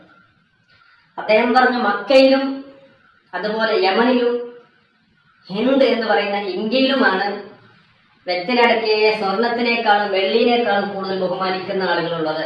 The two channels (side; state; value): both; identical; correlation 1.00